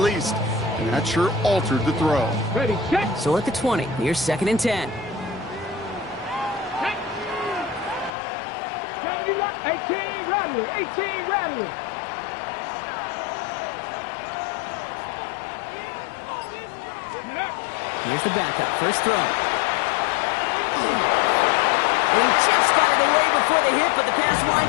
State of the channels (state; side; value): drops out; right; at 8.1 s